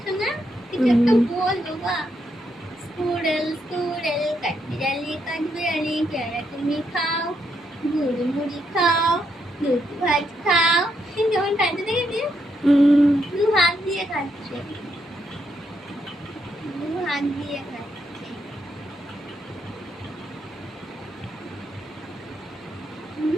না? কিছু একটা বল বাবা। স্কুরেল স্কুরেল কাঠবিড়ালি কাঠবিড়ালি পেয়ারা তুমি খাও, গুড় মুড়ি খাও, দুধ ভাত খাও। যেমন খাচ্ছে দেখেছিস? দু হাত দিয়ে খাচ্ছে, দু হাত দিয়ে খাচ্ছে।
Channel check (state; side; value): normal; both; correlation 0.78